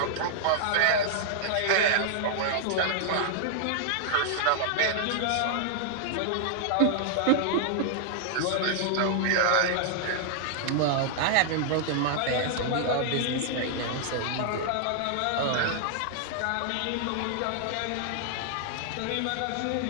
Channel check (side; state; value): both; different; correlation -0.01